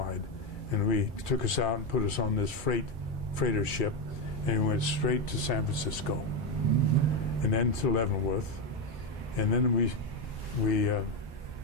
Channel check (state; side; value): normal; both; correlation 0.10